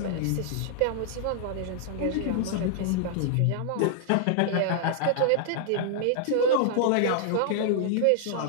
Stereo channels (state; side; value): different; both; correlation -0.01